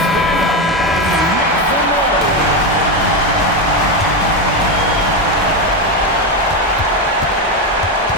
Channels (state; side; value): normal; both; correlation 0.11